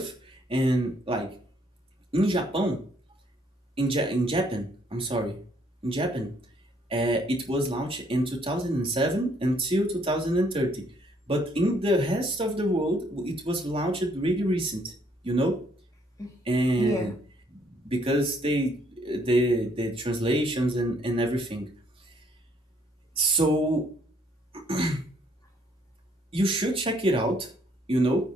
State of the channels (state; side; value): normal; both; correlation 0.67